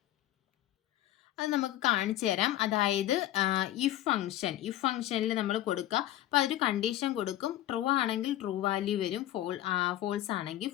അത് നമുക്ക് കാണിച്ചു തരാം. അതായത് ഇഫ് ഫംഗ്ഷനിൽ നമ്മൾ കൊടുക്കുക. അപ്പോൾ അതൊരു കണ്ടീഷൻ കൊടുക്കും. ട്രൂ ആണെങ്കിൽ ട്രൂ വാല്യൂ വരും, ഫോൾസ് ആണെങ്കിൽ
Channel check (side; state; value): right; quieter; 13.9 dB